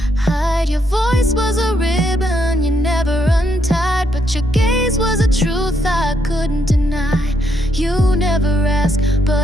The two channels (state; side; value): normal; both; correlation 0.76